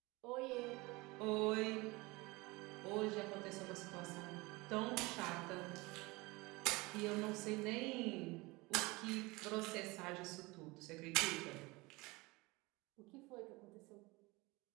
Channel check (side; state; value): left; quieter; 23.5 dB